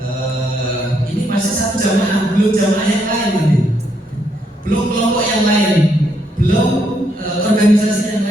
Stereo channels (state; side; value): normal; both; correlation 0.75